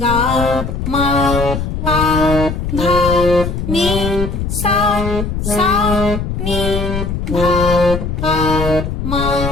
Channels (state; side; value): noise; left; rumble, 3 dB below the sound